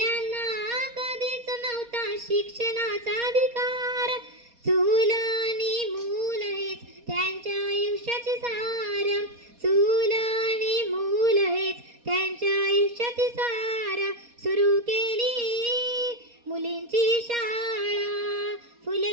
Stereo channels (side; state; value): left; late; 4.2 ms